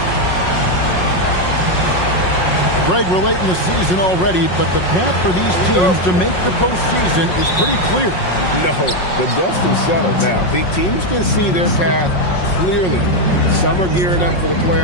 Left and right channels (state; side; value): late; right; 5.5 ms